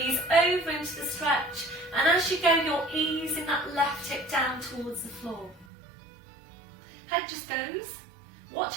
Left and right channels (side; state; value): left; drops out; at 5.7 s